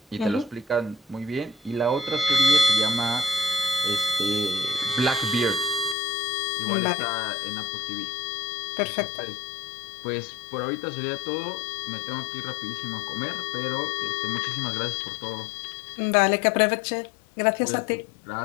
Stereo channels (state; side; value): drops out; right; at 6.0 s